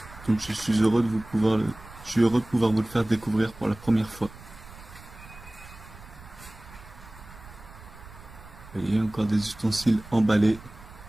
Donc je suis heureux de pouvoir vous le faire découvrir pour la première fois. Vous voyez, encore des ustensiles emballés.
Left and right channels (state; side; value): noise; right; rumble, 19 dB below the sound